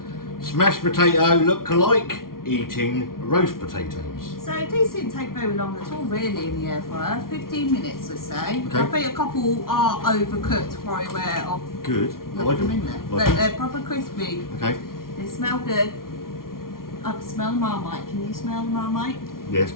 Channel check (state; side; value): late; right; 0.92 ms